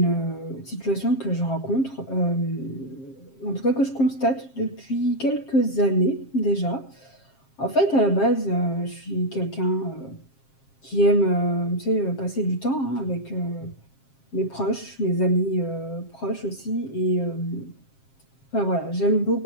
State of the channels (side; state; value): right; late; 7.5 ms